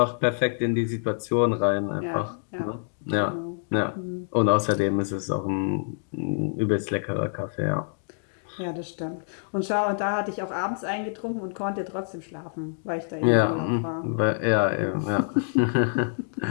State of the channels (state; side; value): silent; right; digital silence